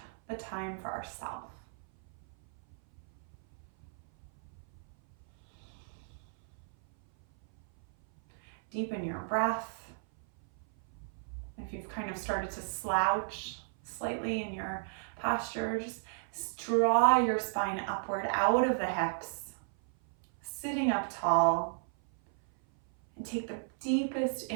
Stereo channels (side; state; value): left; silent; 55 dB below the other